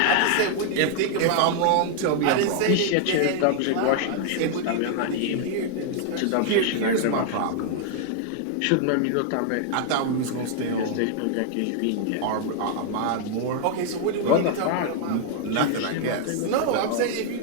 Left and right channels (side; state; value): both; different; correlation 0.00